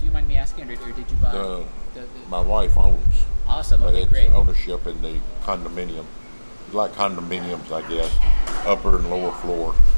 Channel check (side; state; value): both; inverted; correlation -1.00